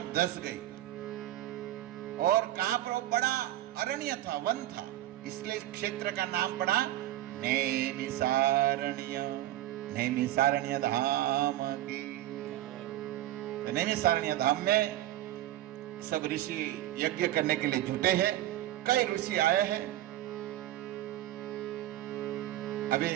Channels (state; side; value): quieter; left; 14.4 dB